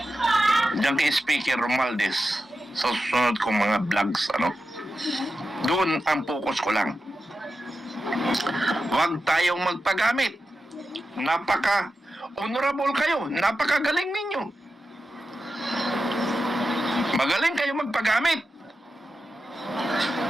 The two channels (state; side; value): normal; both; correlation 0.91